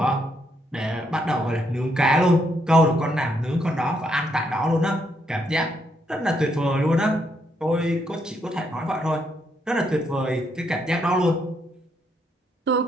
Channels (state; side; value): normal; both; correlation 0.76